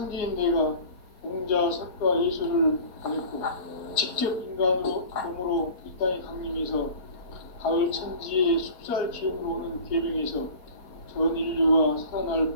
내가 공자, 석가, 예술을 보냈고 직접 인간으로 몸으로 이 땅에 강림해서 가을 천지의 숲살 기운으로 오는 계명에서 전 인류가 살아날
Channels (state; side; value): late; right; 4.3 ms